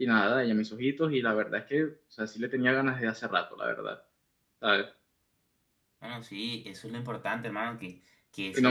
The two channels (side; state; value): both; identical; correlation 1.00